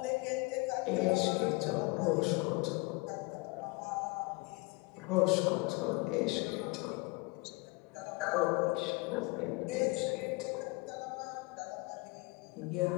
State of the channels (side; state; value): right; quieter; 26.1 dB